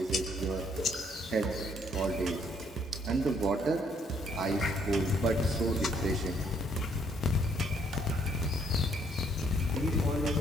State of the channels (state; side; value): normal; both; correlation 0.67